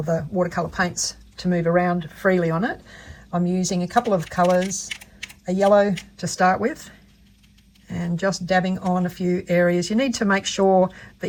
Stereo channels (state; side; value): identical; both; correlation 1.00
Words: the watercolour paints to move around freely on it. I'm using a couple of colours, a yellow to start with, and just dabbing on a few areas. You need to make sure